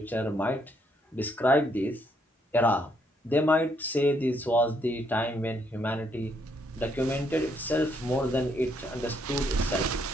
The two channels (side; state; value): both; normal; correlation 0.72